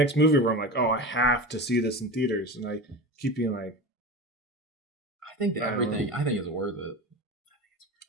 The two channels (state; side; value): normal; both; correlation 0.28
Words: movie where I'm like, oh, I have to see this in theaters. And I keep being like, I think it's worth it.